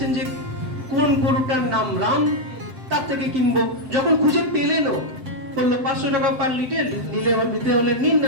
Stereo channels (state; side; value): late; left; 7.7 ms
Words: যে কোন গরুটার নাম রাম, তার থেকে কিনবো। যখন খুঁজে পেলেনও, বললো 500 টাকা পার লিটার, নিতে হলে নিন,